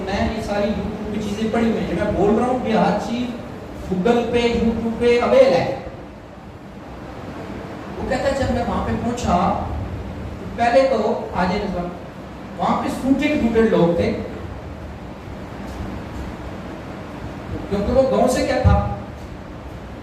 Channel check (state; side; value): identical; both; correlation 1.00